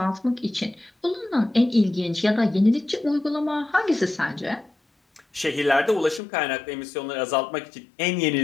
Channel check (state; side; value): drops out; right; at 6.2 s